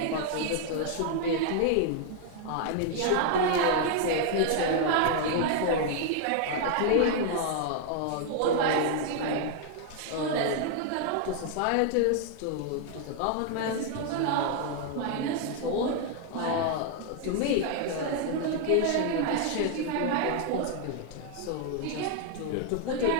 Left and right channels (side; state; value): both; different; correlation 0.00